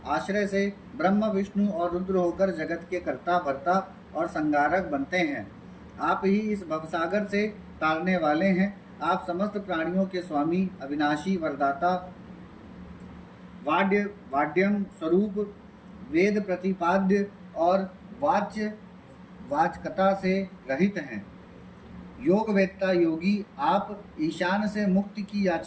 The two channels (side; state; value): both; identical; correlation 1.00